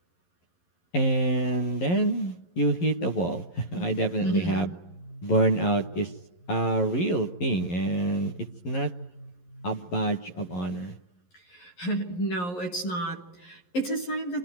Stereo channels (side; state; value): right; late; 11 ms